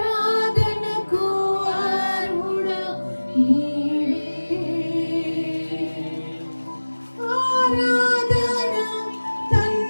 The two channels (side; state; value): both; inverted; correlation -1.00